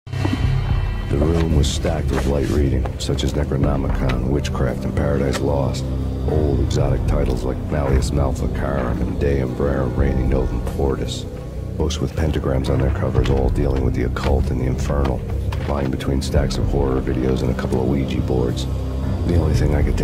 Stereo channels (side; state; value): both; identical; correlation 1.00